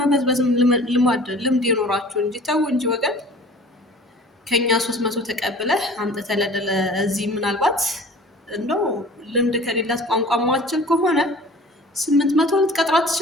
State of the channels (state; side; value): normal; both; correlation 0.45